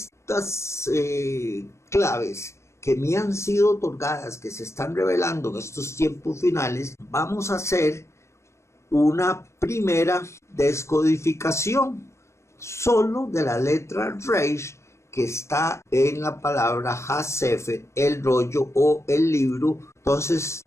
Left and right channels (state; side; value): late; right; 0.13 ms